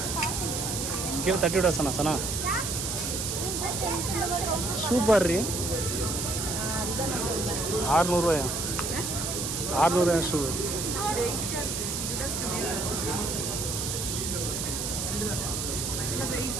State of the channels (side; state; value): right; noise; hiss, 2 dB below the sound